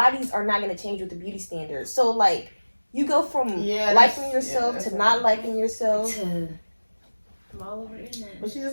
are not going to change with the beauty standards. So, like, you go from Yeah, liking that's- yourself yeah, to that's not liking yourself. I'm all over the internet. But you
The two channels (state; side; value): inverted; both; correlation -1.00